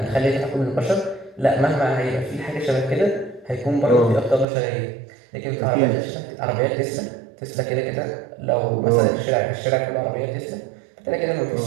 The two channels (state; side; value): drops out; left; at 4.5 s